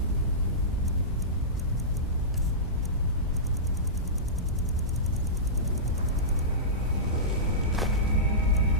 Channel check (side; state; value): both; normal; correlation -0.18